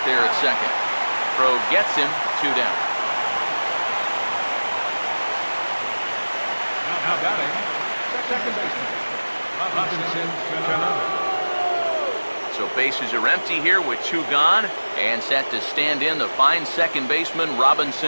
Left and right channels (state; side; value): inverted; both; correlation -1.00